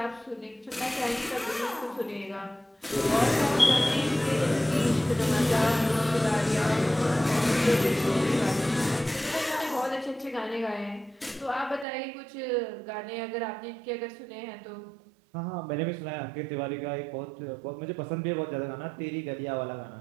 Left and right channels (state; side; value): drops out; left; at 11.9 s